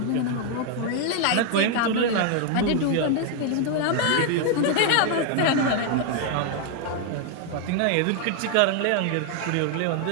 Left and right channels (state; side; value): different; both; correlation 0.00